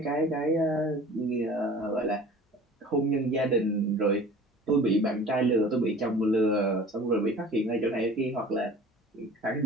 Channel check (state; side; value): normal; both; correlation 0.44